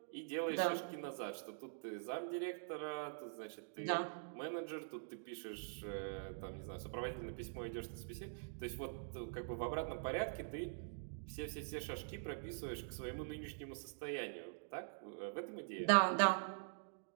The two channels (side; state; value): left; silent; digital silence